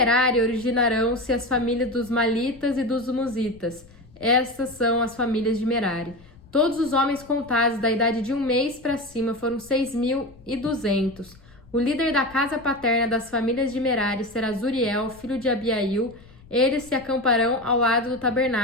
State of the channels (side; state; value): left; noise; rumble, 24 dB below the sound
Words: originarão-se as famílias dos Malitas e dos Musitas. Estas são as famílias de Merari. Todos os homens contados da idade de 1 mês para cima foram 6.200. O líder da casa paterna das famílias de Merari será Zuriel, filho de Abiail. Eles se acamparão ao lado do